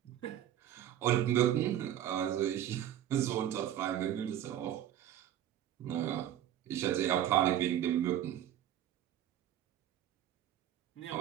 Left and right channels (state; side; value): quieter; left; 11.4 dB